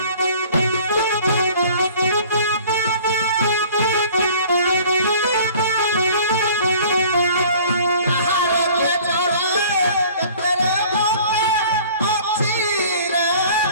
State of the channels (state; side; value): inverted; both; correlation -0.49